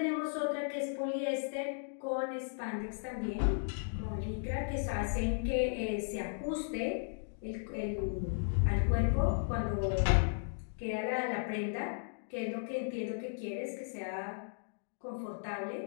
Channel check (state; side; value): silent; right; digital silence